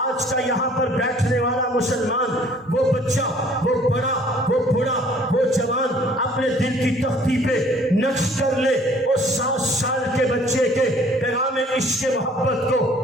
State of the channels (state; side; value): normal; both; correlation 0.55